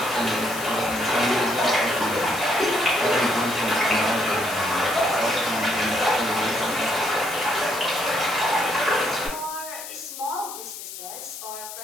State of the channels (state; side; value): noise; left; hiss, 10 dB below the sound